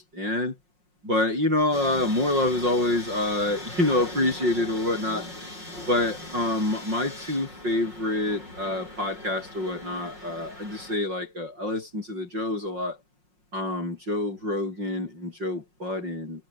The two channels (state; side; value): late; left; 5.5 ms